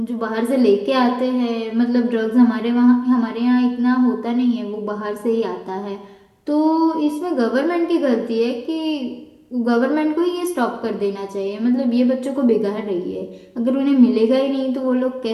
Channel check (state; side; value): identical; both; correlation 1.00